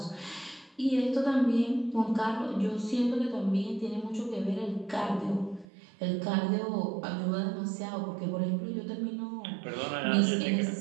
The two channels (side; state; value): left; drops out; at 5.7 s